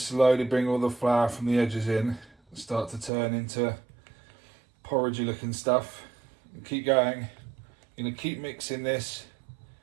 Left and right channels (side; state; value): left; drops out; at 3.1 s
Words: bring all the flour from the edges in and start to turn into porridgey looking stuff. And keep going. You're going to keep mixing this